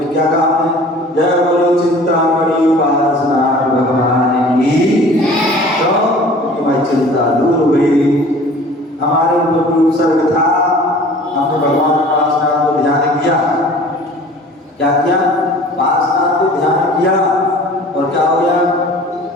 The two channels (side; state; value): both; normal; correlation 0.46